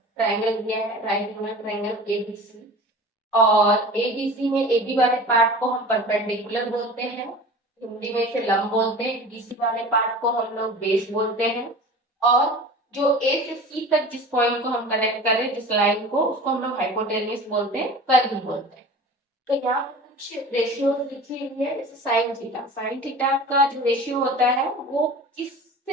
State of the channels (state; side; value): normal; both; correlation 0.38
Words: ट्रायंगल दिया है, राइट एंगल ट्रायंगल एबीसी, और एबीसी में एबी वाले पार्ट को हम परपेंडिकुलर बोलते हैं, हिंदी में इसे लंब बोलते हैं। बीसी वाले पार्ट को हम लोग बेस बोलते हैं। और जो ए से सी तक जिस पॉइंट को हम कनेक्ट कर रहे हैं, जिस लाइन को, उसको हम लोग हाइपोटेन्यूस बोलते हैं, कर्व बोलते हैं। तो यहाँ पर कुछ रेशियो लिखी हुई है, जैसे साइन थीटा। साइन थीटा का जो रेशियो होता है वो